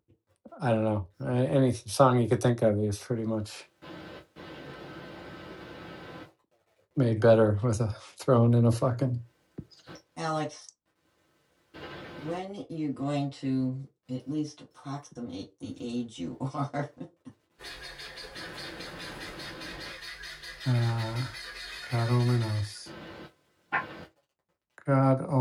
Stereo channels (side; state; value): both; identical; correlation 1.00